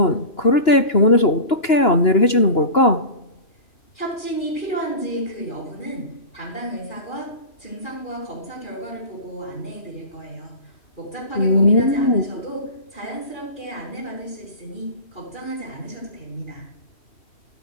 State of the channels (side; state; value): right; late; 2.9 ms